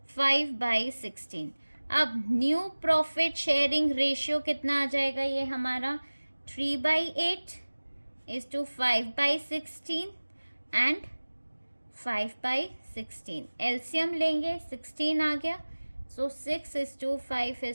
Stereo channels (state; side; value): inverted; both; correlation -1.00